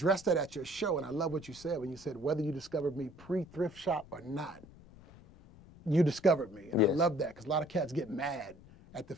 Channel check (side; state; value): left; noise; rumble, 22 dB below the sound